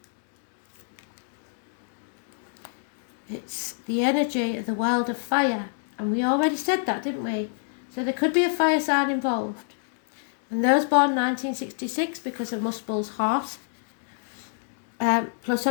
It's the energy of the world of fire. And we already said that, didn't we? So there could be a fire sign involved. And those born 1966 because of Muspel's horse, plus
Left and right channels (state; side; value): silent; right; digital silence